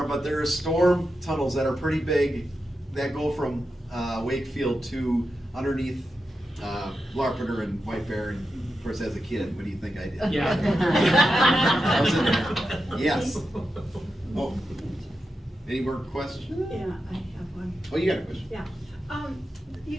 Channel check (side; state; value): both; normal; correlation 0.89